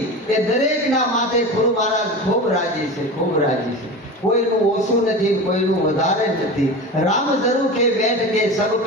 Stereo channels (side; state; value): both; normal; correlation 0.29